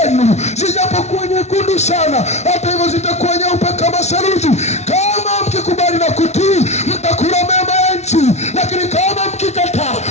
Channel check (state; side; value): late; right; 0.32 ms